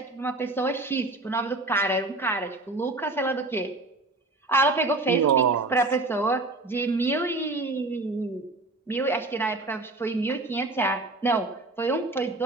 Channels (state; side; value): quieter; left; 3.0 dB